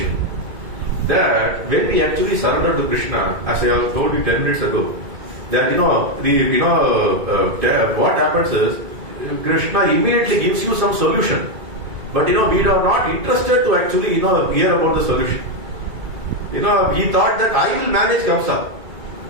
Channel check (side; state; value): left; late; 2.2 ms